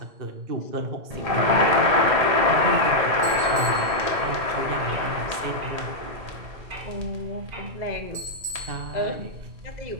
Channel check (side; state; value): left; late; 1.8 ms